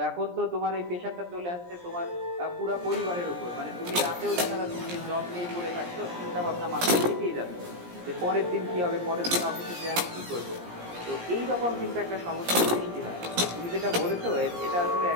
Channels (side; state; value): left; late; 17 ms